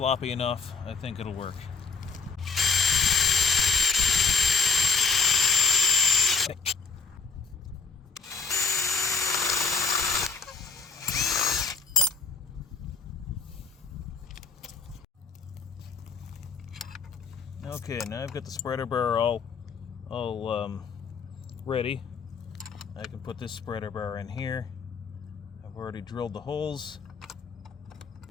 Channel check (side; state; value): right; quieter; 4.9 dB